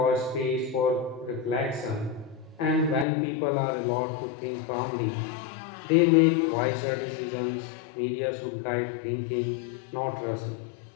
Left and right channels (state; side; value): drops out; right; at 3.1 s